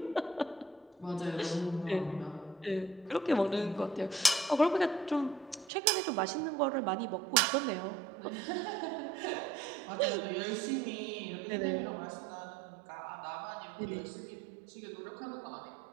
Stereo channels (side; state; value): left; drops out; at 5.7 s